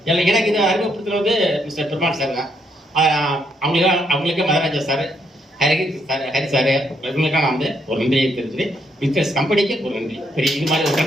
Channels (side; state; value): both; normal; correlation 0.74